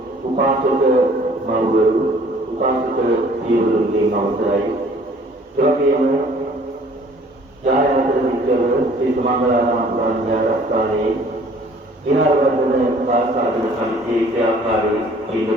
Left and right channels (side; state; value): both; normal; correlation 0.54